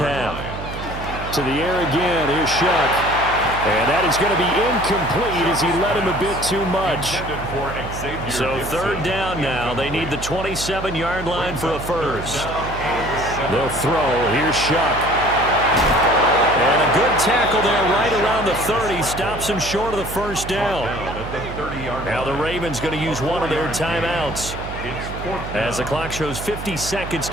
To the air again. Here's Shuck. And that is going to be incomplete as he led him a bit too much. So 3rd down now. They need the 27-yard line for a first. They'll throw. Here's Shuck. And a good tackle there right around the 30. Stops him short of the first down. Now the Ravens going to use one of their timeouts as the clock shows 50 seconds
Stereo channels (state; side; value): noise; right; hum, 9 dB below the sound